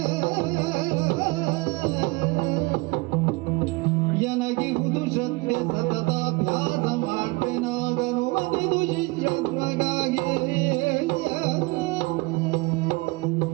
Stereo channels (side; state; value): left; quieter; 24.8 dB